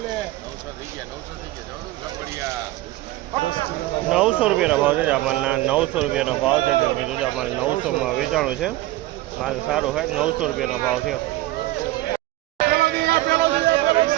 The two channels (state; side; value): quieter; left; 17.0 dB